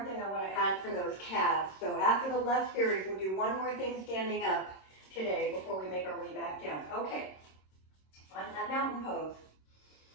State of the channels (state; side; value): late; right; 26 ms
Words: thing I want to add for those calves. So after the left series, we'll do one more thing standing up today before we make our way back down. Okay, find that mountain pose.